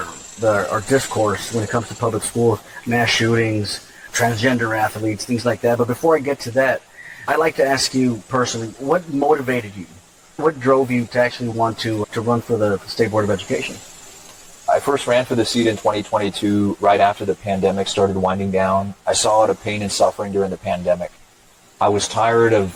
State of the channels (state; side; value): identical; both; correlation 1.00